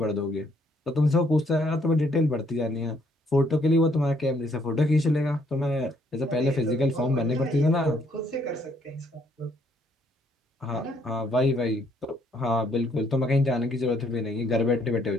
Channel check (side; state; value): both; normal; correlation 0.68